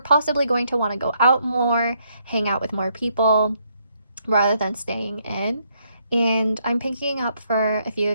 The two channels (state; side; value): inverted; both; correlation -0.73